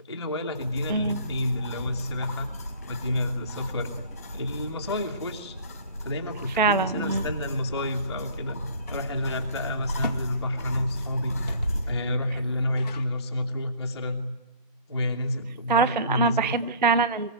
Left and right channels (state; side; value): inverted; both; correlation -0.47